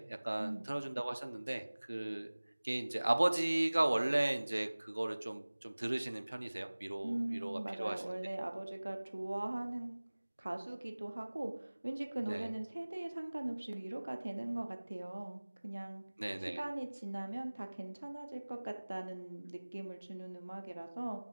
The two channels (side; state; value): both; inverted; correlation -1.00